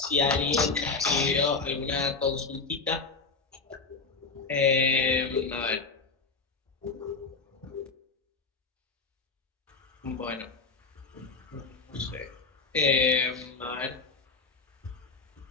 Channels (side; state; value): right; quieter; 4.2 dB